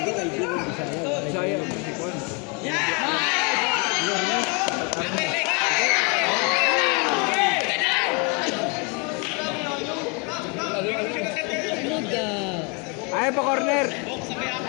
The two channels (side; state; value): right; quieter; 32.9 dB